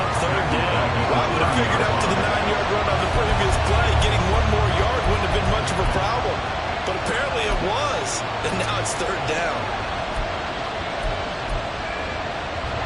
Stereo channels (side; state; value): both; identical; correlation 1.00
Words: third down. Well, I would have figured out to the 9-yard run on the previous play, getting 1 more yard wouldn't have been much of a problem. But apparently it was, and now it's third down.